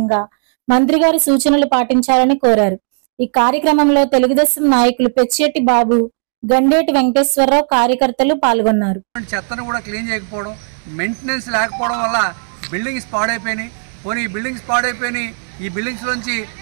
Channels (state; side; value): silent; left; 69 dB below the other